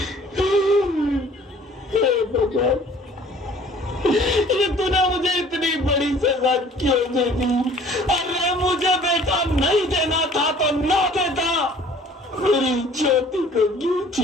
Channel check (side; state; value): both; normal; correlation 0.52